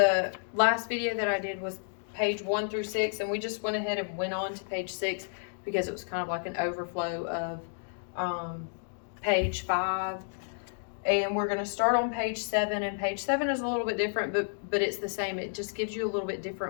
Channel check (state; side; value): silent; right; digital silence